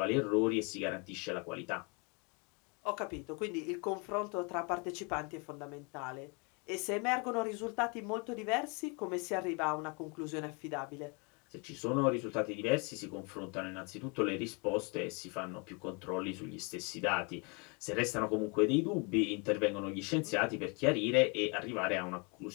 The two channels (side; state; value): right; quieter; 32.6 dB